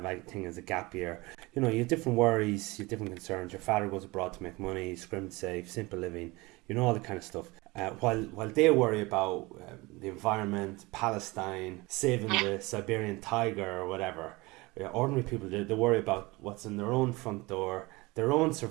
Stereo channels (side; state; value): left; quieter; 23.1 dB